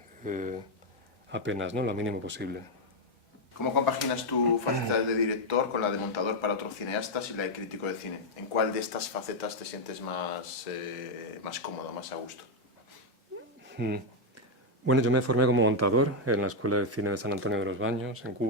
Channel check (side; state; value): both; normal; correlation 0.02